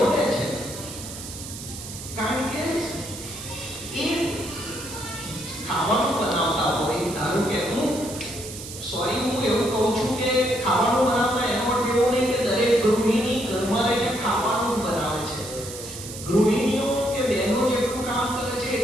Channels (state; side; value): noise; right; hiss, 11 dB below the sound